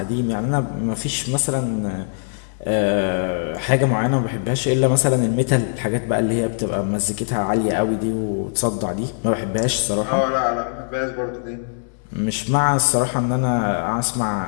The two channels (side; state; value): right; silent; digital silence